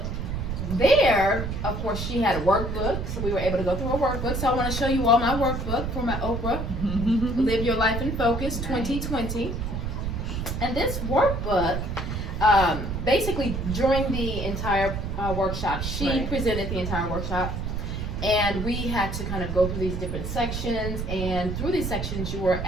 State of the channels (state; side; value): noise; right; rumble, 4 dB below the sound